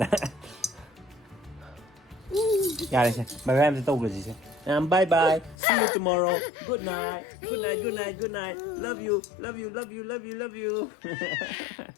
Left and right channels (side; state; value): right; drops out; at 5.6 s